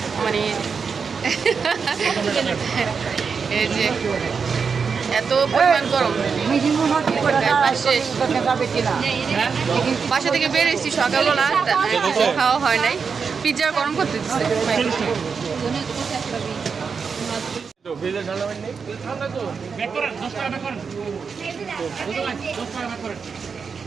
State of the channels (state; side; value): quieter; left; 5.7 dB